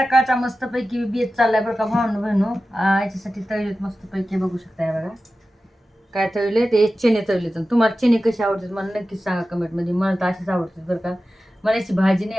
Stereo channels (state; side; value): normal; both; correlation 0.94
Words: मस्तपैकी बेत चाललाय बरं का भावनं बहिणू. याच्यासाठी तळलेत मस्तपैकी, बघू शकताय बघा काय तळले. ते चणे तळले. तर तुम्हाला चणे कशी आवडतात मला नक्कीच सांगा कमेंटमध्ये. मला तर अशीच आवडतात बरं का. मला याची भाजी